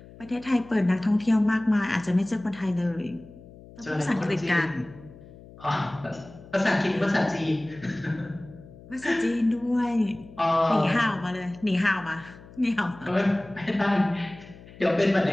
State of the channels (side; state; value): left; noise; hum, 20 dB below the sound